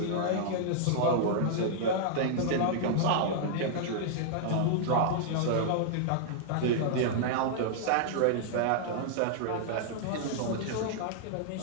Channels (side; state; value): both; different; correlation -0.01